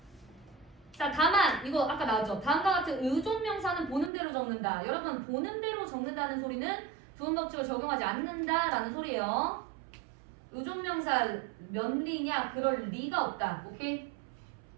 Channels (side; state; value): left; drops out; at 4.1 s